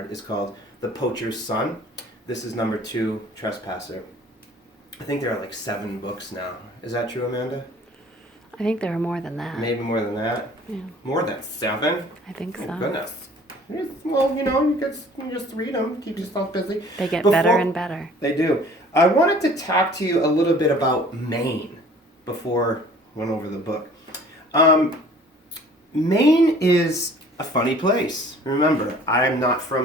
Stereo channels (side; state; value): both; normal; correlation 0.51